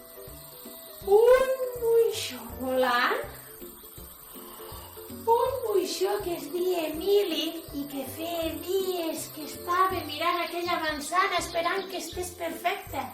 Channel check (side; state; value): both; identical; correlation 1.00